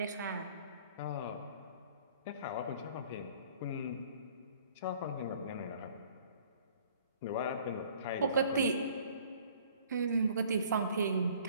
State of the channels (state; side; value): inverted; both; correlation -0.54